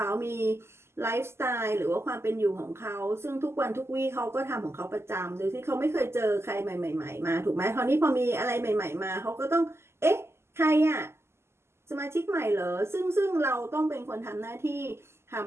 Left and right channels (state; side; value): late; left; 0.12 ms